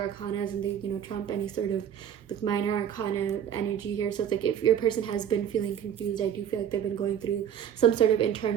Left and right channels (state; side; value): quieter; left; 9.3 dB